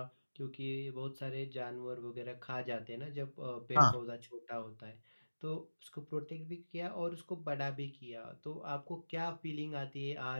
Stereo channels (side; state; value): both; inverted; correlation -1.00